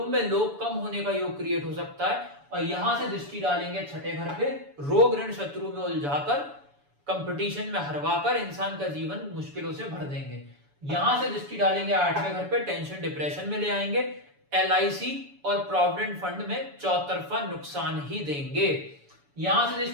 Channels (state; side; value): late; left; 7.0 ms